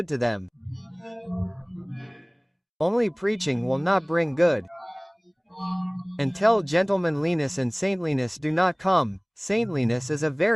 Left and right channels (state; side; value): identical; both; correlation 1.00